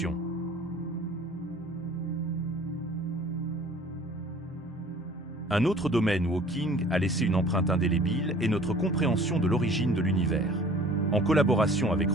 Un autre domaine où Hawking a laissé une empreinte indélébile est notre compréhension de l'origine de l'univers. En collaboration avec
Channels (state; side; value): normal; both; correlation 0.49